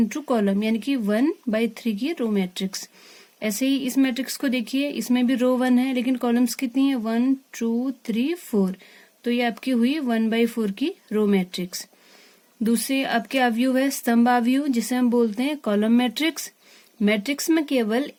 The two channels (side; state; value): both; identical; correlation 1.00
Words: कॉलम, यानी कि 1/3 की रो मैट्रिक्स। ऐसे ही इस मैट्रिक्स को देखिए, इसमें भी रो 1 है लेकिन कॉलम्स कितनी है 1 2 3 4। तो ये आपकी हुई 1/4 की रो मैट्रिक्स। दूसरी आपके आव्यूह है स्तंभ आव्यूह, जिसे हम बोलते हैं कॉलम मैट्रिक्स। मैट्रिक्स में केवल